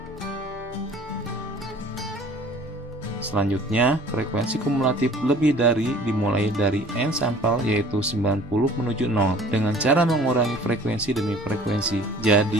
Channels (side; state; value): both; normal; correlation 0.50